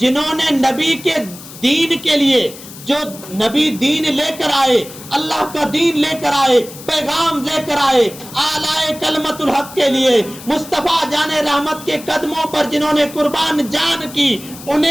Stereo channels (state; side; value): noise; left; hiss, 16 dB below the sound